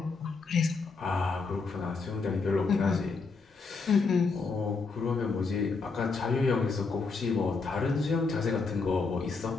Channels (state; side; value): quieter; right; 4.4 dB